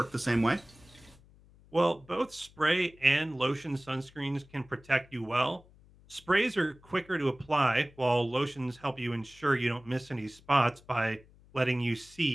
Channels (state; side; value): noise; left; hum, 26 dB below the sound